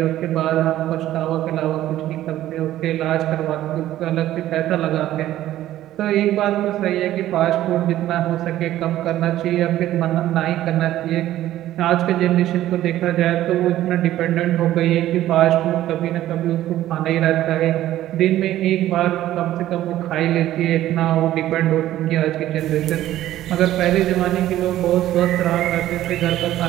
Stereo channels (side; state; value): left; quieter; 13.7 dB